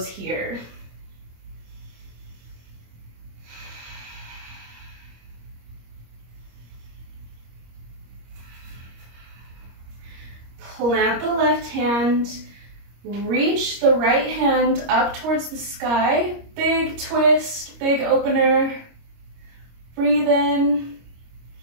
here. Plant the left hand, reach the right hand up towards the sky. Big twist, big opener. Breathe in.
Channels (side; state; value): left; late; 25 ms